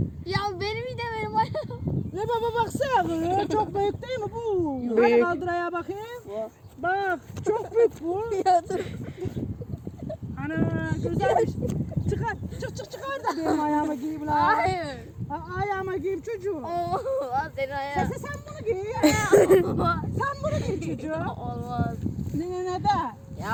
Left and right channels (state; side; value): identical; both; correlation 1.00